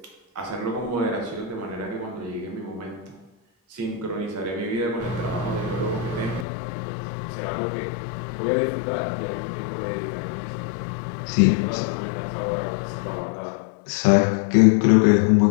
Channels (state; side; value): drops out; right; at 6.5 s